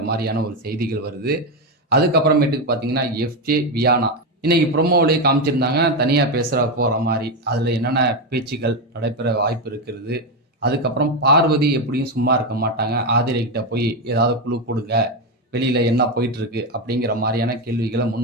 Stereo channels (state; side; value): normal; both; correlation 0.10